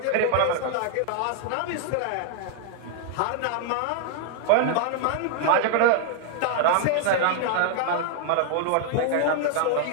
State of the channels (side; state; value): both; different; correlation -0.01